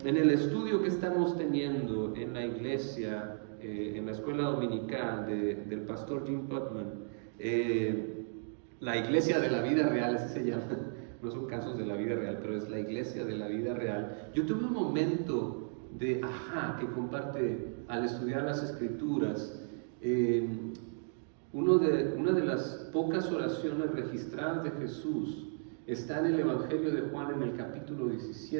el estudio que estamos teniendo en la iglesia, en la escuela dominical del pastor Jim Putman, la iglesia de la vida real, así se llama, no son casos de la vida real, pero es la iglesia de la vida real. Yo tuve un momento de ajá que comparte al estudiar las escrituras. Una de las pocas oraciones registradas de Jesús está en el Evangelio de Juan en el capítulo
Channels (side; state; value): left; silent; digital silence